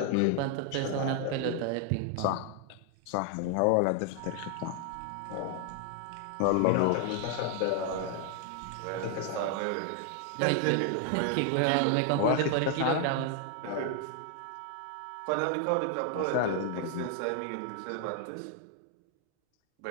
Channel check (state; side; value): different; both; correlation 0.00